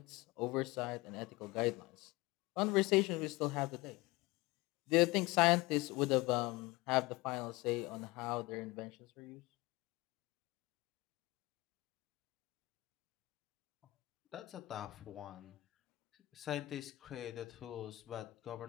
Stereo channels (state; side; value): quieter; right; 21.0 dB